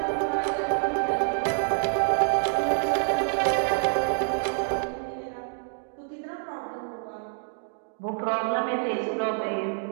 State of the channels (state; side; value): silent; left; 55 dB below the other